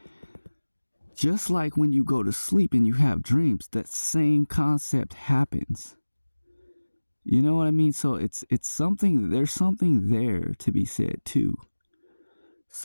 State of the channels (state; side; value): inverted; both; correlation -1.00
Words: Just like when you go to sleep and you have dreams, that same concept happens. You know what I mean? So it's something, there's something there to be said too.